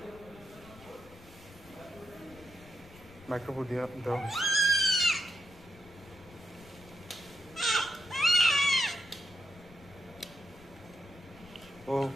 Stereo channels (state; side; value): noise; left; rumble, 21 dB below the sound